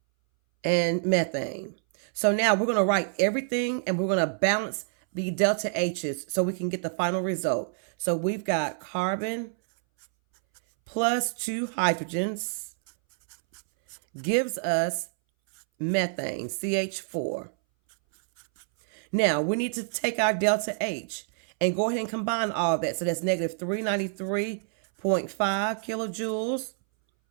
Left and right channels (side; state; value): left; silent; 60 dB below the other